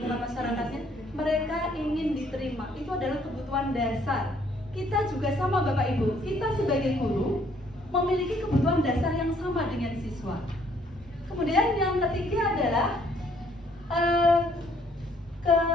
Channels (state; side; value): normal; both; correlation 0.64